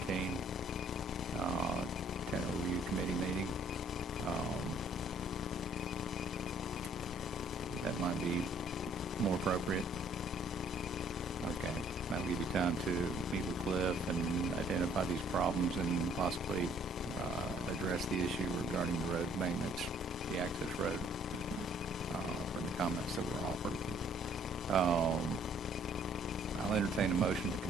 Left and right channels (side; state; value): both; normal; correlation 0.61